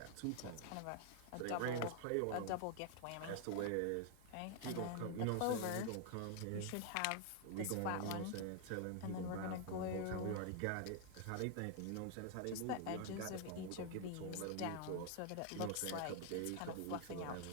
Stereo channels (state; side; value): different; both; correlation 0.00